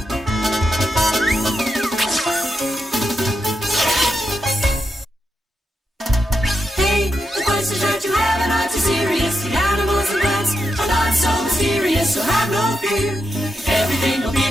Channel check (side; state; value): both; normal; correlation 0.85